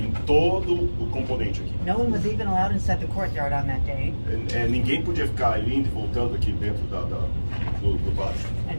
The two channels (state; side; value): inverted; both; correlation -1.00